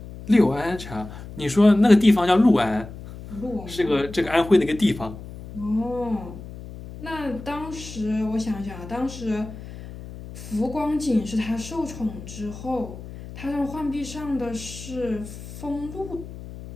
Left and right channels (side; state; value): left; noise; hum, 13 dB below the sound